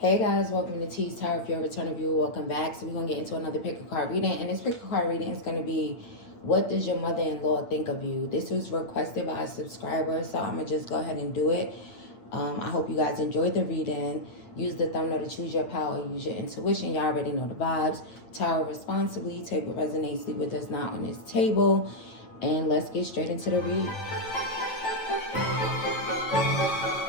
Hey guys, welcome to Teestarot. If you're a returning viewer, welcome back. So we're going to get into another pick a card reading. And this pick a card reading is going to be, what does your mother-in-law think of you? This was requested by a subscriber, so I'm going to just go ahead and do it. I hope you guys enjoyed the reading. Use the thumbnail to choose your power. Use your intuition. Y'all already know the vibes. Tarot responsibly. Take what resonates, leave what does not on this table. And let's get straight into the read.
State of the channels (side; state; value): right; late; 9.0 ms